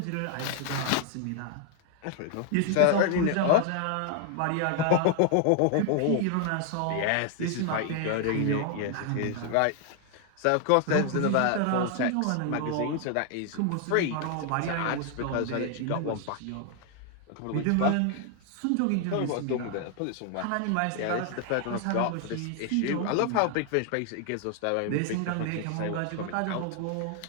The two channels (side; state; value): both; different; correlation 0.00